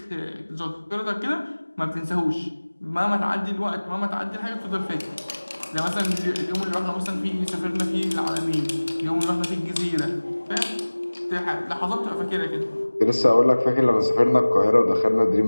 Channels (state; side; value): inverted; both; correlation -1.00